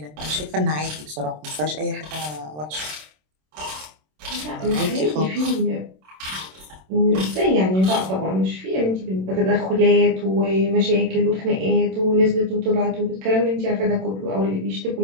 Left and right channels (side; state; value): left; late; 27 ms